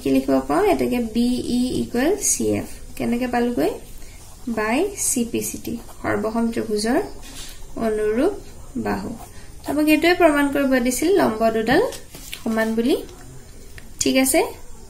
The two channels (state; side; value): identical; both; correlation 1.00